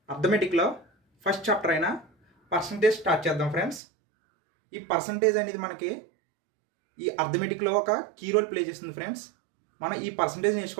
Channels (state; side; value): drops out; left; at 3.8 s